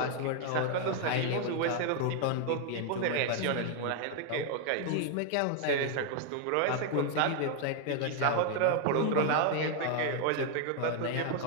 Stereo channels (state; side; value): different; both; correlation 0.00